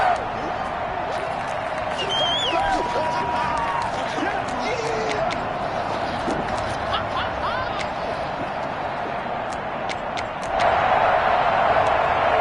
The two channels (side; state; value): both; identical; correlation 1.00